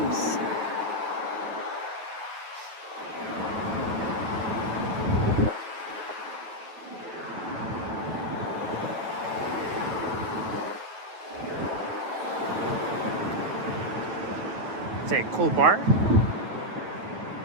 It's a cool bar.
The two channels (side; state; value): left; late; 9.5 ms